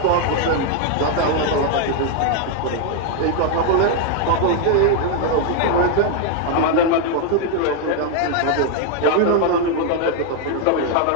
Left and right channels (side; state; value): both; different; correlation 0.00